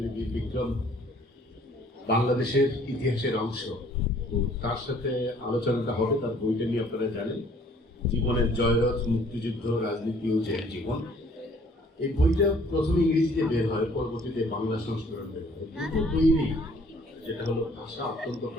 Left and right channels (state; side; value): normal; both; correlation 0.58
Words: বীর বিক্রম, বাংলাদেশের ইতিহাসের অংশ। তো তার সাথে আলোচনাটা হবে, তার বইটা নিয়ে আপনারা জানেন, জীবনের জয়রথ, মুক্তিযুদ্ধ, রাজনীতি ও জয়ের জীবন। এই বইটা প্রথমে ইংরেজিতে বের হয়, পরবর্তীতে বাংলা সংস্করণ বের হয়। দুটো বইয়েরই যেটা হলো ভাষা অত্যন্ত